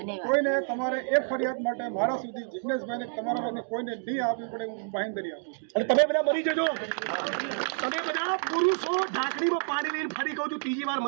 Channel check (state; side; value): silent; left; digital silence